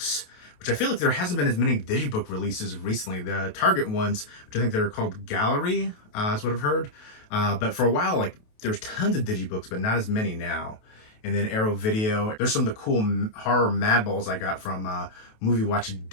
which I feel like there hasn't been as many digibook releases recently. The Target ones, which I think they're called Gallery, is what I've heard. But for a while, like, there's tons of digibooks, but not as many now. And then Arrow Video. There's some of the cool horror madballs I got from Movie Watch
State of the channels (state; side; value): late; right; 28 ms